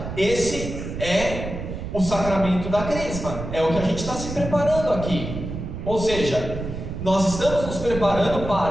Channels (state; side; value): noise; right; rumble, 7 dB below the sound